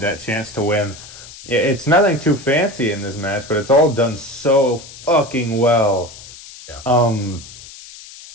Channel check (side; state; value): left; noise; hiss, 17 dB below the sound